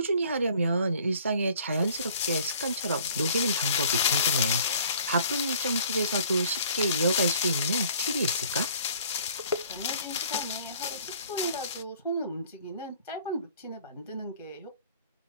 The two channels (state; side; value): inverted; both; correlation -0.54